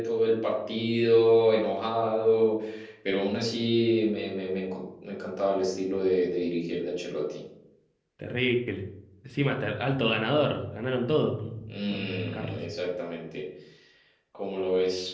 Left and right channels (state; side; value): identical; both; correlation 1.00